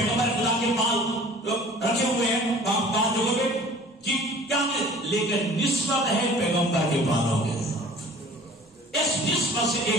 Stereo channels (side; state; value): both; normal; correlation 0.47